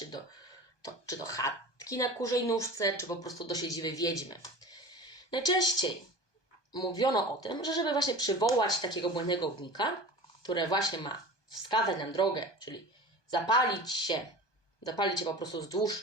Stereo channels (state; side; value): late; right; 1.2 ms